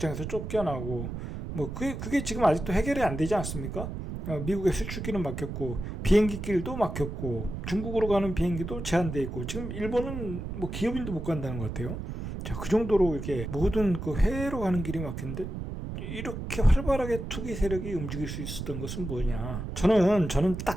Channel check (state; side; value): noise; right; rumble, 6 dB below the sound